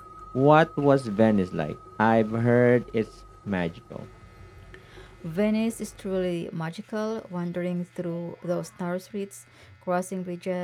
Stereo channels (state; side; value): identical; both; correlation 1.00